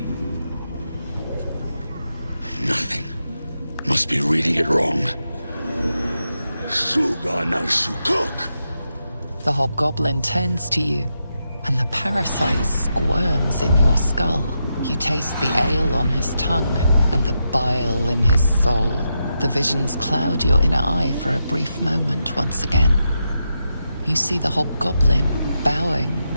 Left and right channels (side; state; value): both; inverted; correlation -0.86